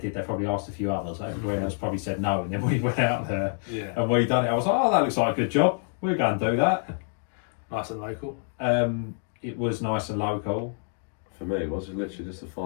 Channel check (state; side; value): silent; right; digital silence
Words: They probably asked a few others. Everybody else probably said no, and then we went out there Yeah, and we done it. I was like, oh, that looks like a good job. We're going to do that. nice and local. It was nice and local. For me, it was literally just a